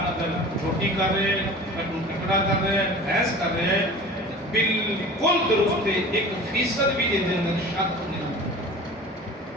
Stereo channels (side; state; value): both; normal; correlation 0.39